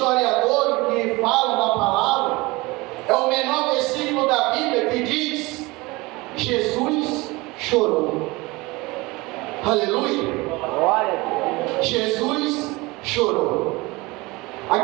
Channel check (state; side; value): quieter; left; 22.9 dB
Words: que falam da palavra, é o menor versículo da Bíblia que diz: Jesus chorou. Aleluia! Glória a Deus. Jesus chorou.